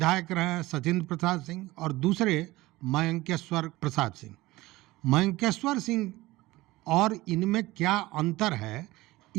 रहे हैं सचिंद्र प्रसाद सिंह, और दूसरे मयंकेश्वर प्रसाद सिंह। मयंकेश्वर सिंह और इनमें क्या अंतर है,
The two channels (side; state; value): left; quieter; 19.0 dB